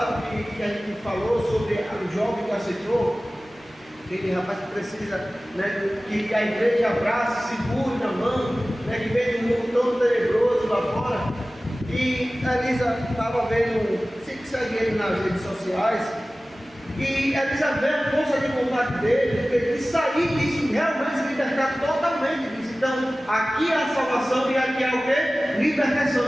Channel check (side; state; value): right; noise; rumble, 29 dB below the sound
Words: que a gente falou sobre o jovem que aceitou, aquele rapaz que precisa, né, que a igreja abraça, segure na mão, né, que vem de um mundo todo tenebroso lá fora. E a Elisa estava vendo, sempre segue ele nas redes sociais, e a Elisa vê a força de vontade dele, de sair disso, realmente se libertar totalmente disso. Então, aqui é a salvação e aqui é o quê?